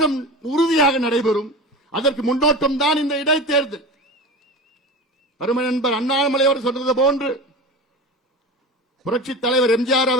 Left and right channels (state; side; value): normal; both; correlation 0.31